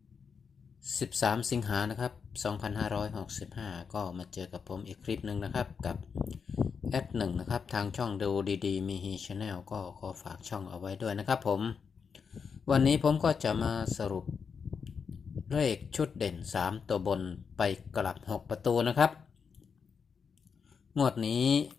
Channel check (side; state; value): right; quieter; 6.1 dB